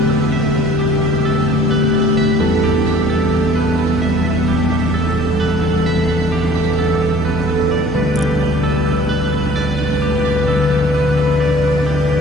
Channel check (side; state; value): both; normal; correlation 0.52